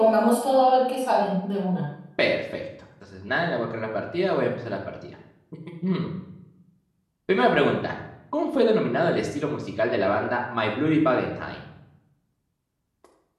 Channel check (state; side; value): identical; both; correlation 1.00